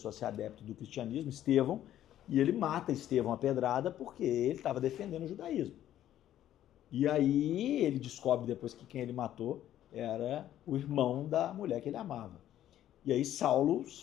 a ser adepto do cristianismo, Estevão, e ele mata Estevão a pedrada porque ele estava defendendo o judaísmo. E aí ele descobre depois que quem ele matou era o irmão da mulher que ele amava. E aí Saulo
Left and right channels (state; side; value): quieter; right; 12.0 dB